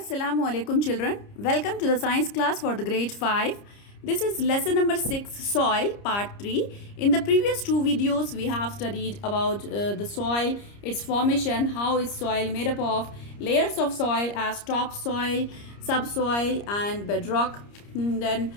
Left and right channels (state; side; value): late; right; 30 ms